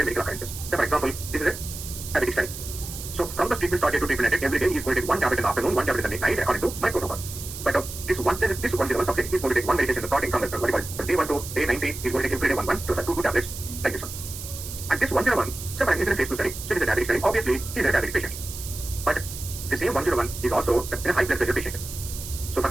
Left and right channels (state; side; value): noise; right; hiss, 10 dB below the sound